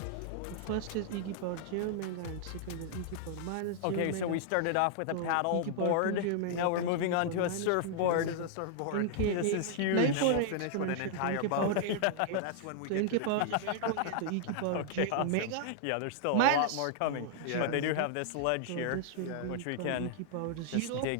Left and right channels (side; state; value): both; different; correlation -0.01